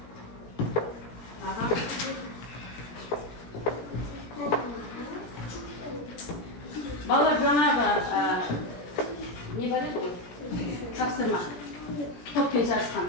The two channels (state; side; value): late; right; 17 ms